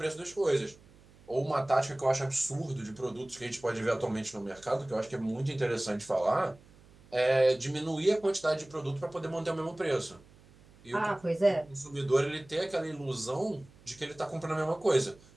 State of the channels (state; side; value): noise; right; hum, 25 dB below the sound